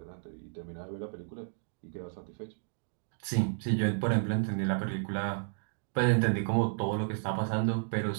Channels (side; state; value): left; silent; digital silence